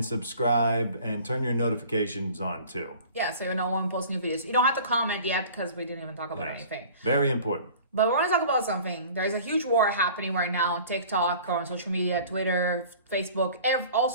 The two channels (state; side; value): inverted; both; correlation -0.46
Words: subscribe, and turn your notifications on too. Yeah, so you know when we post new videos. You don't have to comment yet because we didn't even talk about anything. Very important. But we want to talk about something. There's a huge war happening right now on TikTok, on social media, Twitter, Facebook, all